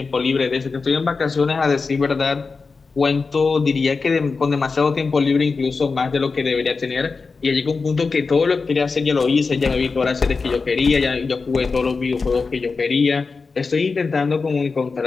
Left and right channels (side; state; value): right; quieter; 4.5 dB